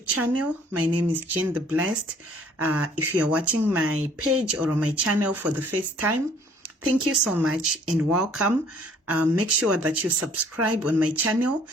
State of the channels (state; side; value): normal; both; correlation 0.58